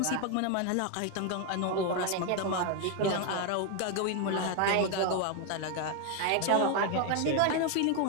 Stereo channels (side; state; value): both; different; correlation 0.01